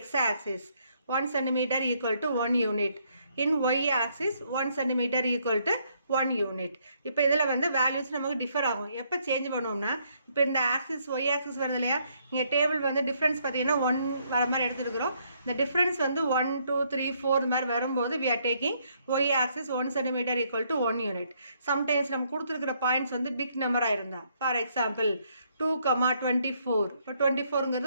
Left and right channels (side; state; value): both; inverted; correlation -0.71